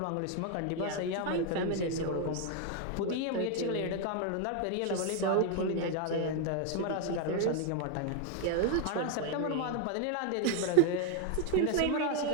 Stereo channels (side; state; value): both; different; correlation 0.01